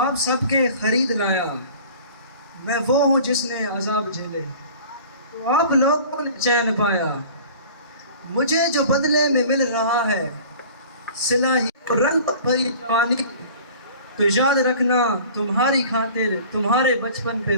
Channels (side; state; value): both; inverted; correlation -0.45